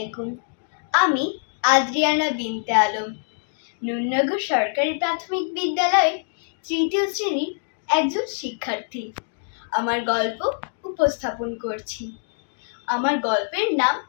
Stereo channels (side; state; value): right; silent; digital silence